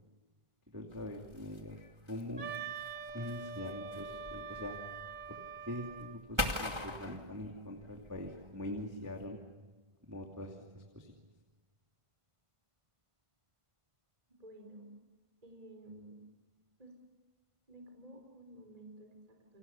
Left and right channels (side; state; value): left; late; 1.3 ms